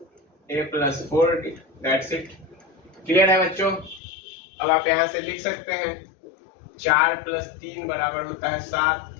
A plus 4D। That's it. Clear है बच्चों? अब आप यहां से लिख सकते हैं 4 प्लस 3 बराबर होता है 7,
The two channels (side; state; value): right; drops out; at 4.0 s